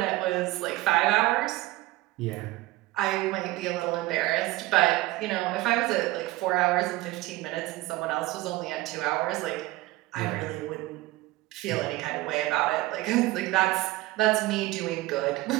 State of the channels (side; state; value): left; quieter; 18.7 dB